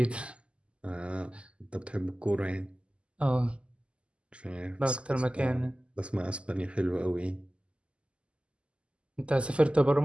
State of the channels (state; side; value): late; left; 0.054 ms